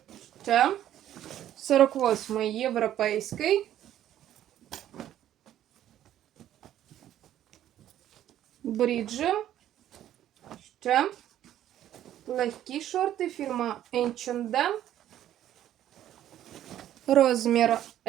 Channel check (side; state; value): left; quieter; 11.8 dB